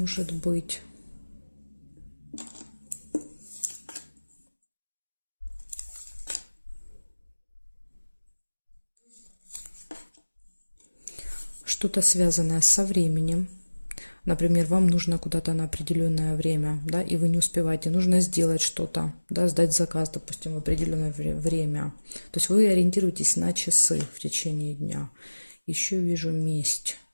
быть. Что-то связанное со временем. Например, вам нужно куда-то на определенное время, да, и вы не успеваете. Нужно сделать что-то, да, сдать заказ, допустим, в определенное время. То есть вы ориентируетесь на часы в течение дня. Еще вижу месть,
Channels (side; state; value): both; inverted; correlation -1.00